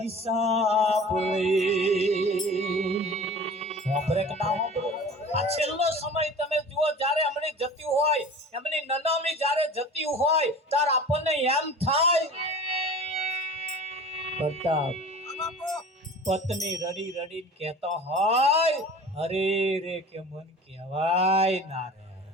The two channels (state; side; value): normal; both; correlation 0.40